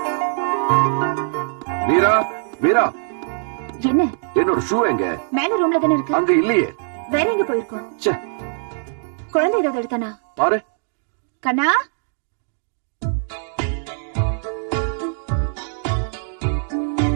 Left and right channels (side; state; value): left; silent; 65 dB below the other